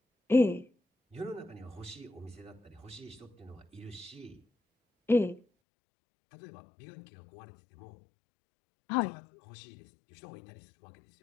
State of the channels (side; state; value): right; drops out; at 5.5 s